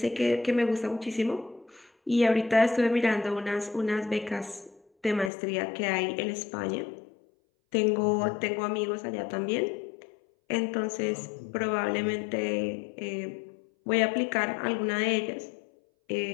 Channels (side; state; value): right; drops out; at 5.3 s